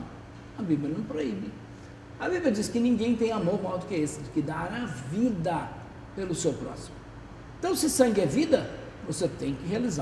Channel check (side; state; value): both; identical; correlation 1.00